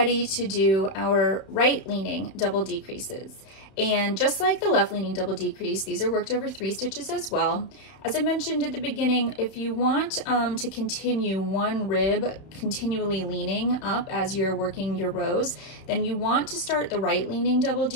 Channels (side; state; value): right; late; 31 ms